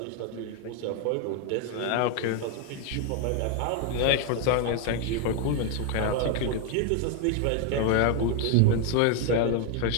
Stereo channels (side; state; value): both; different; correlation 0.01